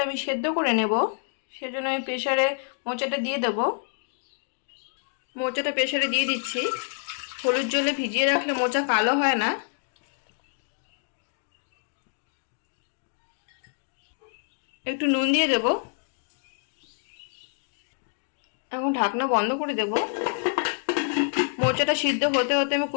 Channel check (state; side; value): silent; right; digital silence